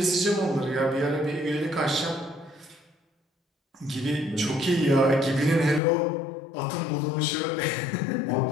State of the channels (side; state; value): right; drops out; at 5.8 s